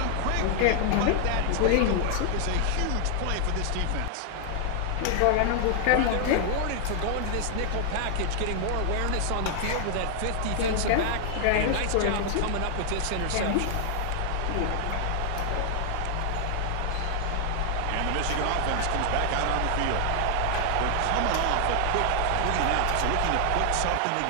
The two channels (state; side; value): different; both; correlation 0.00